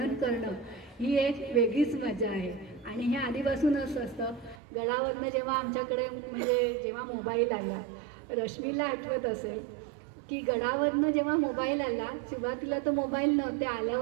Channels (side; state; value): left; drops out; at 4.6 s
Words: करणं ही एक वेगळीच मजा आहे. आणि हे आधीपासून असं असतं. गडावरनं जेव्हा आमच्याकडे म्हणजे जेव्हा मोबाईल आला, रश्मीला आठवत असेल की गडावरनं जेव्हा मोबाईल आला, सुरुवातीला तर मोबाईल नव्हते,